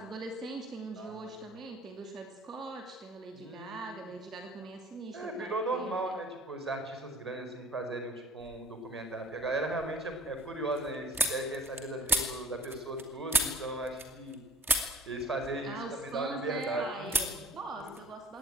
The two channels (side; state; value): both; normal; correlation 0.49